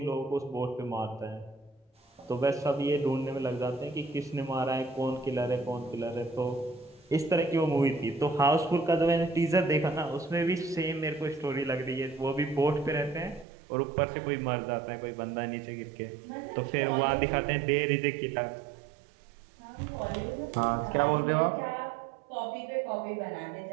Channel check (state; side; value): drops out; left; at 13.5 s